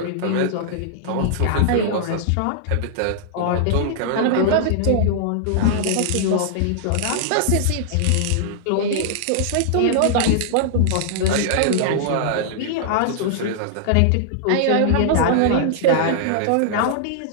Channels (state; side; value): different; both; correlation -0.01